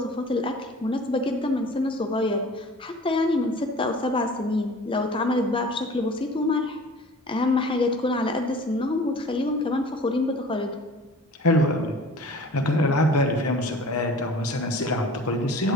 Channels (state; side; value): normal; both; correlation 0.44